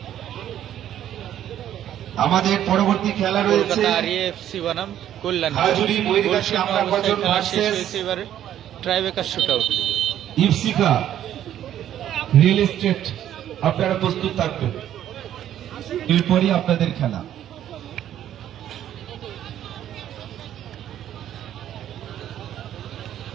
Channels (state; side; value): quieter; left; 11.2 dB